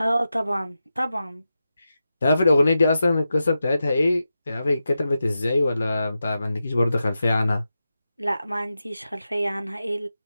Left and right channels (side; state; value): both; inverted; correlation -0.90